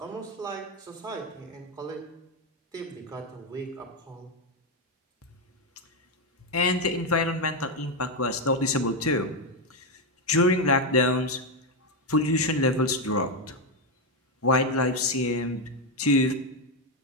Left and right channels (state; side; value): normal; both; correlation 0.06